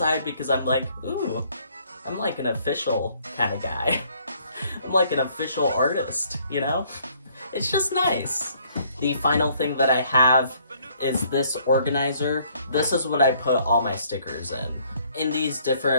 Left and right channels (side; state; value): both; inverted; correlation -0.64